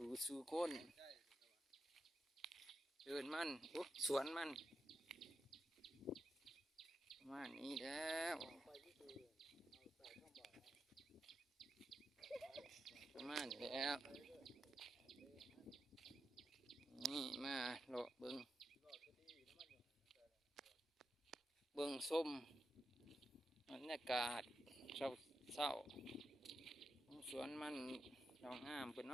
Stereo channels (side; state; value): both; normal; correlation 0.87